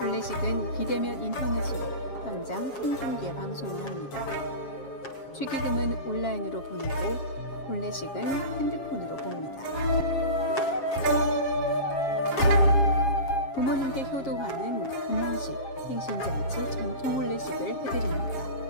비대면 인터넷으로 현장 생중계 방송을 합니다. 축의금은 온라인으로 보내고 혼례식은 핸드폰으로 봅니다. 부모님께 효도하는 금혼식, 생신잔치, 전통 혼례식을 해드립니다.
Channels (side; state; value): right; late; 7.4 ms